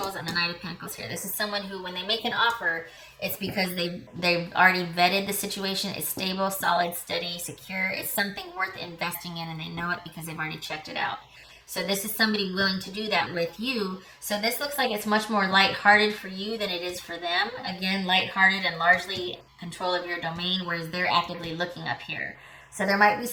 and the Knight of Pentacles here. This is someone who, when they make an offer, it's because they've already vetted the situation. It's stable, solid, steady, secure. It's something worth investing in, and they know it because they've already checked it out. So this is somebody willing to do that with you. So this looks like it's much more lighthearted for you than it is for them. Again, lighthearted and largely control of your domain, whereas they're actively looking up here. So there might be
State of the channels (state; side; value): identical; both; correlation 1.00